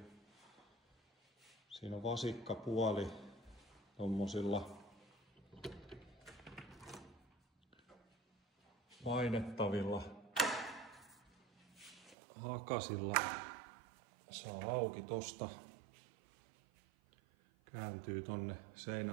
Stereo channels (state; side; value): drops out; left; at 12.2 s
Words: Siinä on vasikkapuoli tommosilla painettavilla hakasilla. Saa auki tosta. Kääntyy tonne